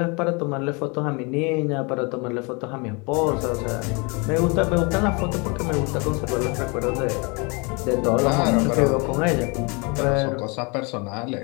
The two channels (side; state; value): right; quieter; 30.6 dB